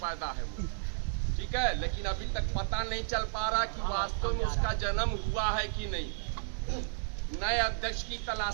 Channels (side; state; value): left; silent; digital silence